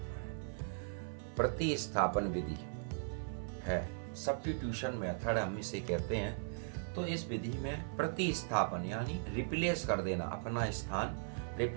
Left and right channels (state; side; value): silent; left; 52 dB below the other